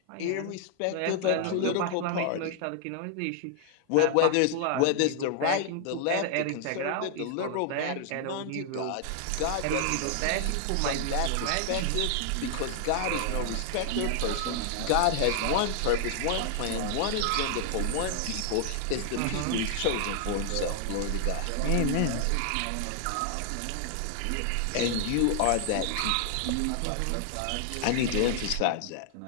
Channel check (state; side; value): different; both; correlation 0.00